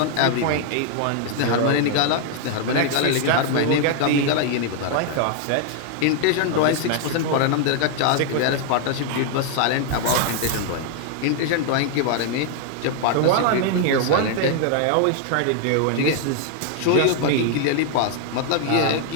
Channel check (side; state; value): both; different; correlation 0.00